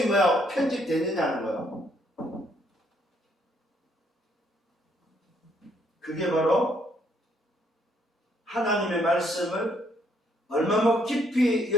뭐야? 편집되느냐는 거예요. 그게 바로 하나님의 말씀을 얼마만큼 깊이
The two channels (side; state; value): both; normal; correlation 0.70